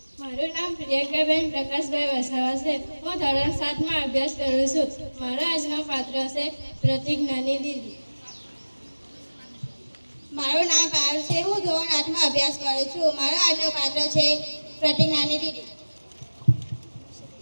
મારું નામ પ્રિયંકાબેન પ્રકાશભાઈ વસાવા છે. હું ધોરણ 7માં અભ્યાસ કરું છું. મારો આજનો પાત્ર છે પ્રતિજ્ઞાની દીદી. મારું નામ પારુલ છે. હું ધોરણ 8માં અભ્યાસ કરું છું. મારો આજનો પાત્ર છે પ્રતિજ્ઞાની દીદી.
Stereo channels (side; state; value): both; inverted; correlation -1.00